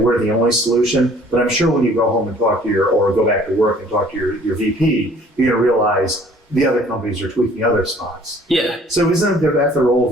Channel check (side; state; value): both; normal; correlation 0.55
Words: the only solution. But I'm sure when you go home and talk to or go back to work and talk to your VP, you're going to realize the other companies are tweaking other spots. Yeah. So isn't that the role of